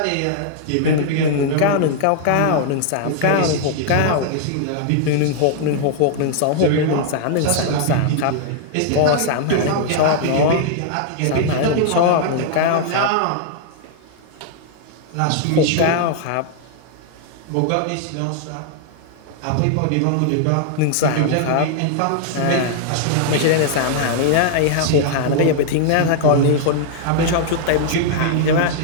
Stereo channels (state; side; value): different; both; correlation -0.01